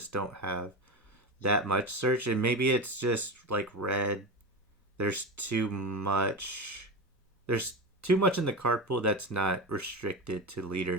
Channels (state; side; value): normal; both; correlation 0.21